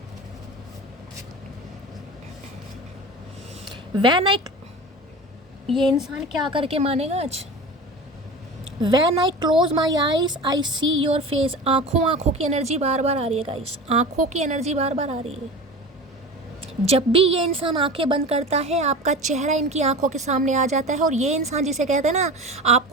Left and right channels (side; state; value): both; normal; correlation 0.32